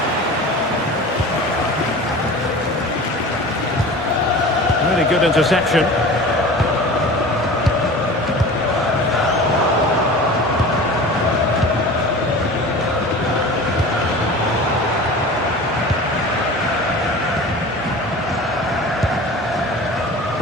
Really good interception.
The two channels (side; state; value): both; normal; correlation 0.38